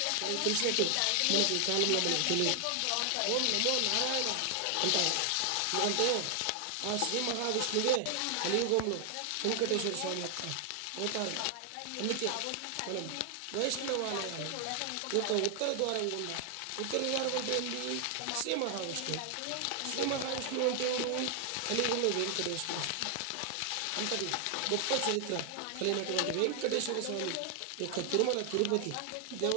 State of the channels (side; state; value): both; different; correlation 0.00